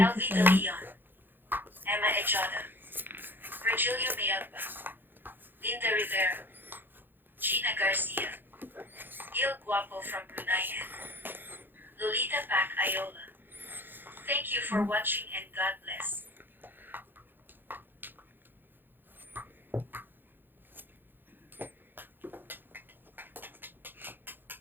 Elvita sa... Leon. Emma Echada. Virgilio Miagba. Linda Rivera. Gina Garcia. Gil Guapo from Brunei. Lolita Pac Ayola. Thank you for watching and God bless.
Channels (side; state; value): left; late; 0.096 ms